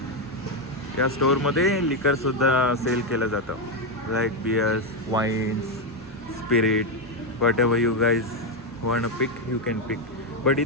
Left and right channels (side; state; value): both; normal; correlation 0.05